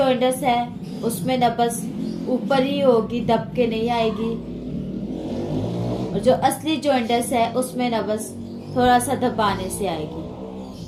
है उसमें नब्ज ऊपर ही होगी, दब के नहीं आएगी, और जो असली जॉइंटिस है उसमें नब्ज थोड़ा सा दबाने से आएगी।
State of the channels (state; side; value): identical; both; correlation 1.00